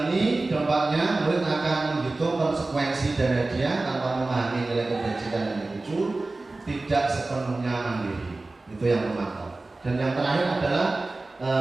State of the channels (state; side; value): quieter; left; 3.2 dB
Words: ini dampaknya murid akan menghitung konsekuensi dari dia tanpa memahami nilai kebajikan yang dituju, tidak sepenuhnya mandiri. Itu yang memantau. Dan yang terakhir adalah